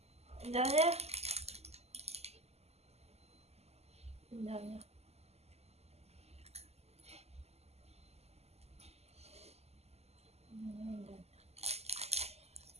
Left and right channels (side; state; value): left; late; 0.30 ms